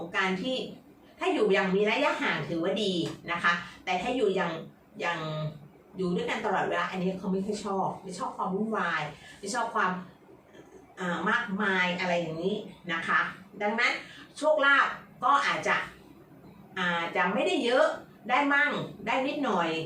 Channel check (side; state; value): both; identical; correlation 1.00